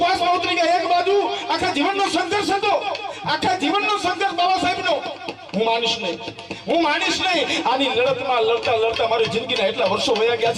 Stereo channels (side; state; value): both; identical; correlation 1.00